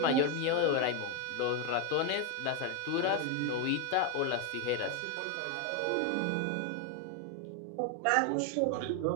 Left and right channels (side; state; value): both; different; correlation 0.02